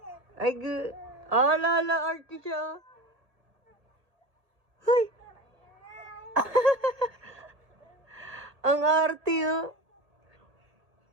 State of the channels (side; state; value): left; late; 1.8 ms